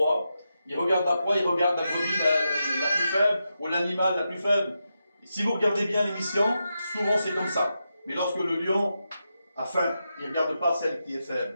Il regarde la proie, il regarde la brebis la plus faible ou l'animal la plus faible. Et si vous regardez bien l'émission, souvent c'est comme ça. Mais lorsque le lion a faim, il ne regarde pas celle qui est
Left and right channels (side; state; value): both; inverted; correlation -0.87